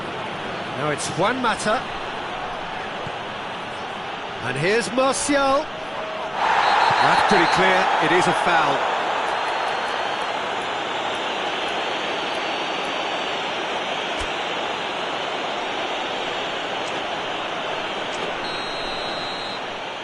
Now it's Juan Mata. And here's Martial. That's pretty clear, it is a foul.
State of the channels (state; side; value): identical; both; correlation 1.00